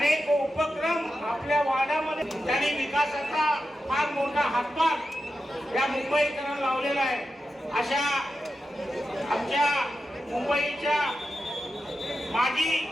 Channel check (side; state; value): both; normal; correlation 0.90